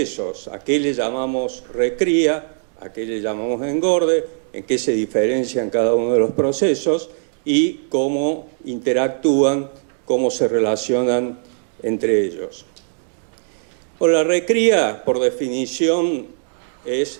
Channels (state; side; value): silent; left; digital silence